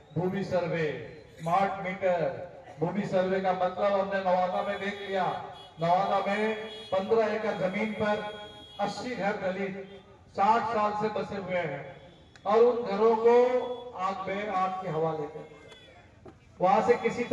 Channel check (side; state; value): both; identical; correlation 1.00